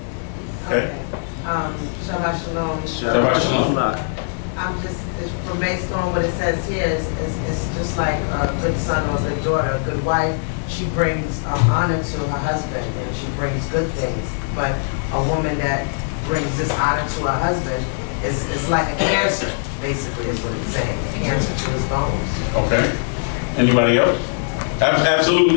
okay. Shabbat Shalom. Shabbat Shalom. I'm just, from based on what it says here, it's just like a good son or a good daughter, a good wife. She brings honor to her husband and she brings good things. But a woman that brings dishonor to her husband is like a cancer, basically, is what it's saying. A cancer to his bones. Okay. Anybody else?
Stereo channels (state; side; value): silent; right; digital silence